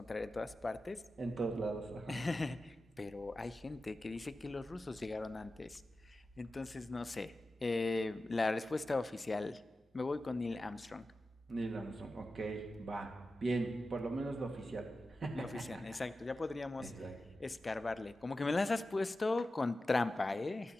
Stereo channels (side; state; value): both; normal; correlation 0.93